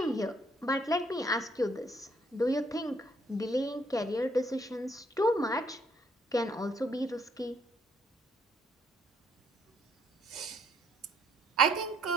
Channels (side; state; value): both; normal; correlation 0.69